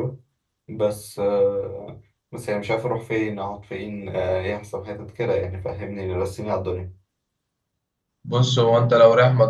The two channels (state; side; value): identical; both; correlation 1.00